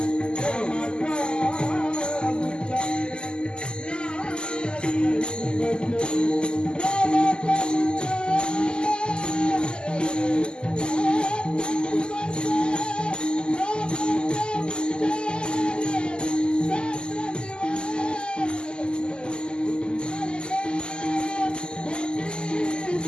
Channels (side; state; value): right; late; 0.048 ms